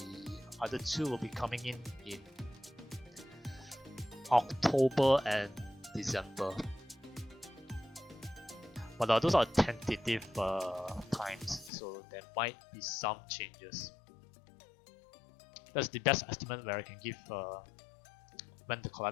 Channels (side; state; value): right; drops out; at 11.7 s